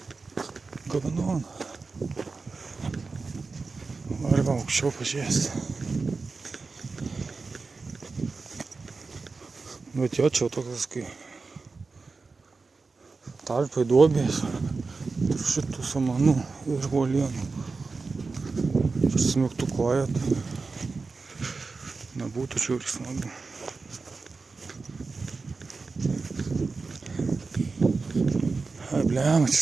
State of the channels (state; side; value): quieter; left; 4.2 dB